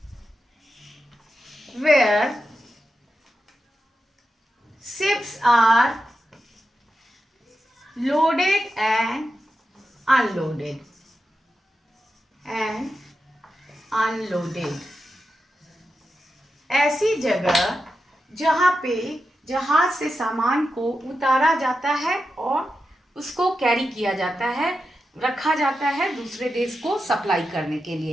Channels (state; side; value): normal; both; correlation 0.89